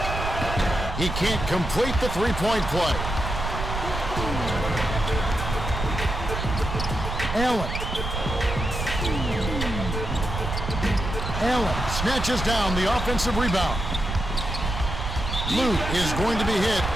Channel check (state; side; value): noise; right; rumble, 4 dB below the sound